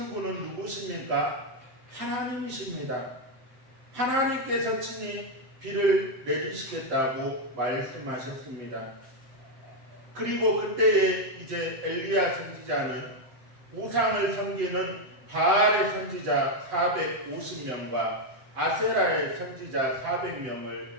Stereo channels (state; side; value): late; left; 7.8 ms